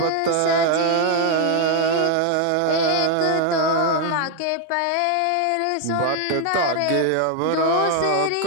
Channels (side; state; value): both; different; correlation 0.00